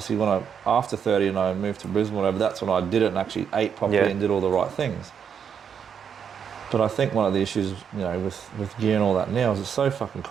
when after 30 and I moved to Brisbane, whatever, that's when I did it and actually ate properly Yeah. and did all the right things. But I think one of the issues, you know, with gear and all that now is it's so fucking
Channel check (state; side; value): quieter; left; 7.5 dB